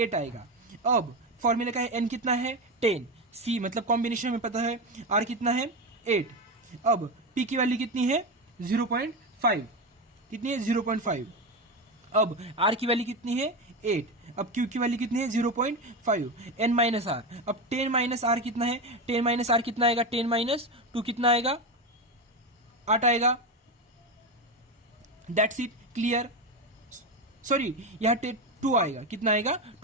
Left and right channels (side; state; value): both; normal; correlation 0.16